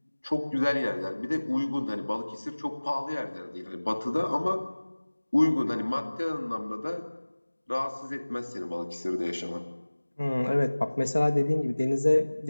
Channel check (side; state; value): both; inverted; correlation -1.00